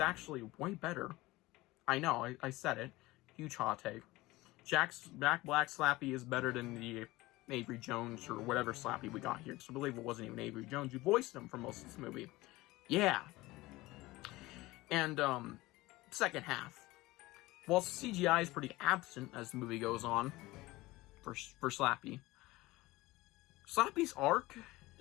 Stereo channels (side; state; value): right; quieter; 19.6 dB